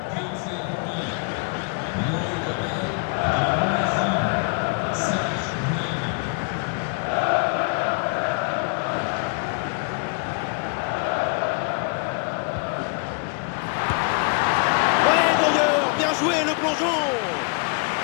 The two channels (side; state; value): right; quieter; 36.1 dB